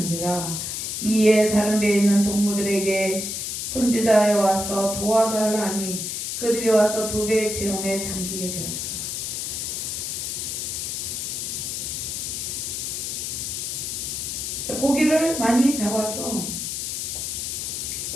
이에 다른 배에 있는 동무들에게 손지자에 와서 도와달라 하니 그들이 와서 두 배의 체험에 잠기게 되었더라. 고기를 많이 잡아서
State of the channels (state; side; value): noise; left; hiss, 3 dB below the sound